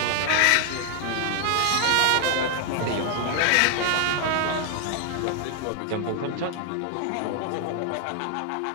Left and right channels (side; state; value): both; different; correlation 0.00